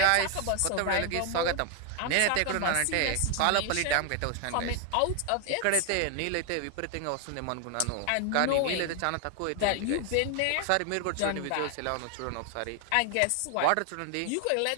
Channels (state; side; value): different; both; correlation 0.00